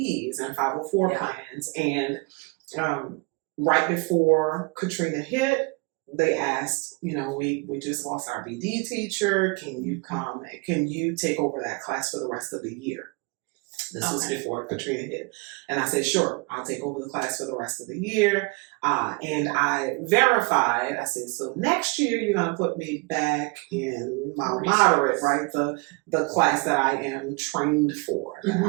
and 504 plans. And right before Katrina hit, they asked, we just lost our BD teacher. Can you come? Can you take over that class for the rest of the year? This was before Katrina hit. And I said, sure, I'll take over the class for the rest of the year. And I verified, I said, so next year you're going to put me back in my moderate, right? The class that I am trained for.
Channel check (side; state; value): left; quieter; 29.1 dB